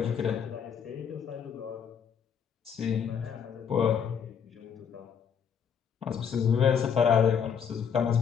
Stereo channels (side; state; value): right; quieter; 7.3 dB